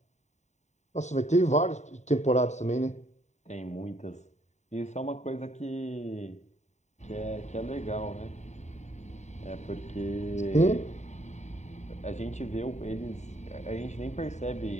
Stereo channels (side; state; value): right; late; 0.34 ms